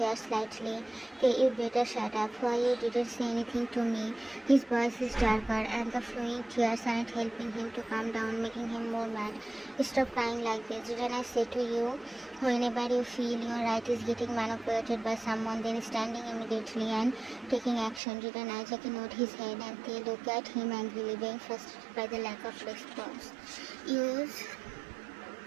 slightly. You better shut up. Why you didn't say anything to me? His voice is darker and the flowing tears aren't helping him to calm down, making him more mad. Stop crying like this. Didn't I say to you, whenever you feel your right is getting manipulated by someone, then standing immediately and taking action? Didn't I? JK nodded his head and they look at him angrily, being frustrated by the lack of response. Use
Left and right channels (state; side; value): drops out; left; at 18.0 s